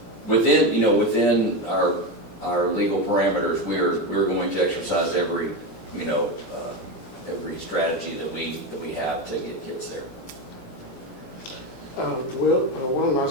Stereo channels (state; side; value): late; right; 17 ms